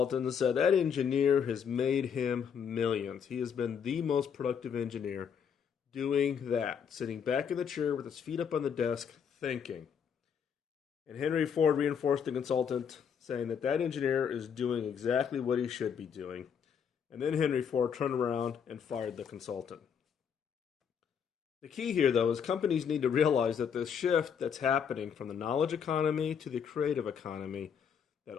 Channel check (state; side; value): quieter; right; 7.3 dB